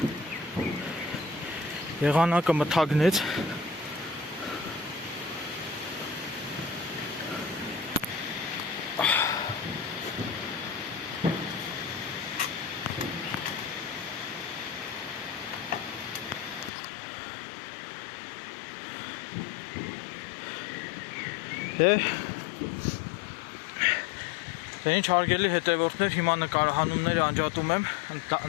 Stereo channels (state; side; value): drops out; right; at 16.7 s